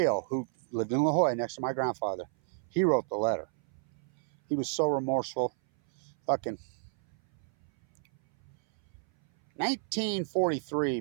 who lived in La Jolla next to my grandfather, he wrote the letter. He was so remorseful. Fucking 1943,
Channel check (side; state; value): left; silent; 57 dB below the other